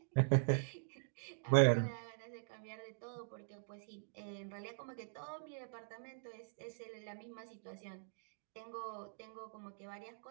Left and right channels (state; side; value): silent; left; digital silence